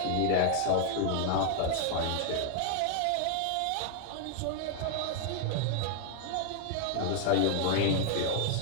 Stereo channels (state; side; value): different; both; correlation 0.00